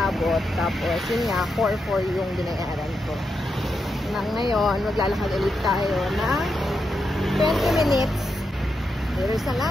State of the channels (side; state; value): both; normal; correlation 0.85